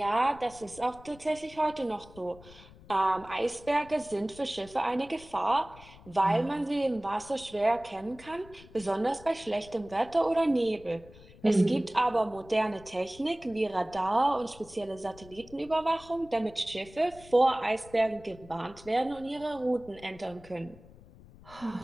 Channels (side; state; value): left; noise; rumble, 21 dB below the sound